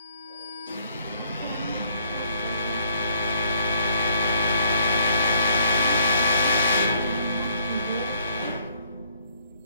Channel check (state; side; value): inverted; both; correlation -0.67